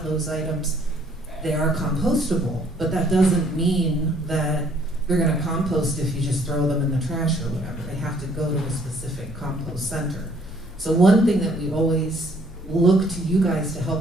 those items, they are compostable, but that doesn't mean that they're gonna compost if you just throw them in the trash or whatever. They have to go to a specific compost center. So one thing that we always look to you guys to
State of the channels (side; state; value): both; normal; correlation 0.62